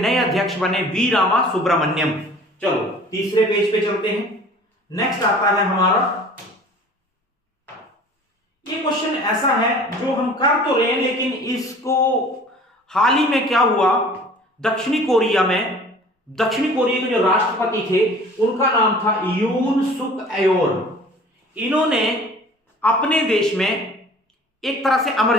अध्यक्ष बने वी रामा सुब्रमण्यम। चलो तीसरे पेज पे चलते हैं। नेक्स्ट आता है हमारा, ये क्वेश्चन ऐसा है जो हम कर तो रहे हैं, लेकिन इसको हाल ही में क्या हुआ, दक्षिणी कोरिया के जो राष्ट्रपति थे उनका नाम था यून सुक एयोल। इन्होंने अपने देश में एक तरह से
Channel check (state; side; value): normal; both; correlation 0.46